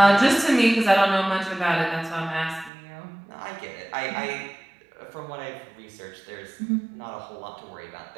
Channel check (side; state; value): left; drops out; at 2.7 s